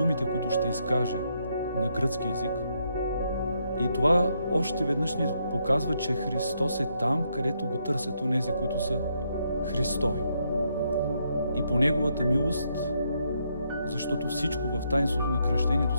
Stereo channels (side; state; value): both; inverted; correlation -0.77